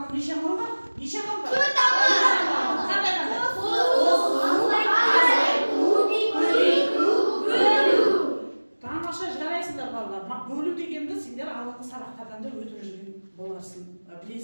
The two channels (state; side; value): inverted; both; correlation -1.00